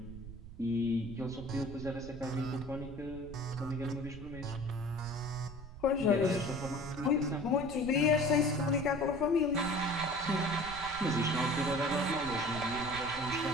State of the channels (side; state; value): right; noise; rumble, 13 dB below the sound